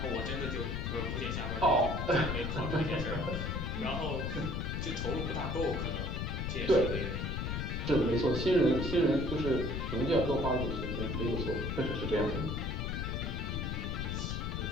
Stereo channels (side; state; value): left; noise; rumble, 2 dB below the sound